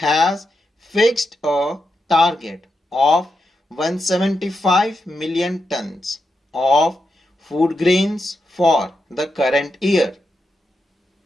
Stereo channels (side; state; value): both; normal; correlation 0.86